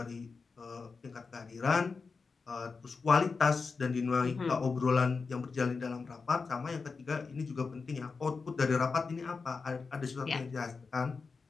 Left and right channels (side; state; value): right; quieter; 4.7 dB